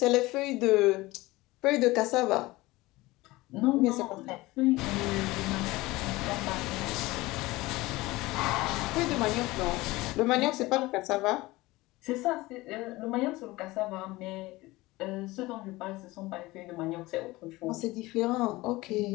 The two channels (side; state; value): right; quieter; 20.2 dB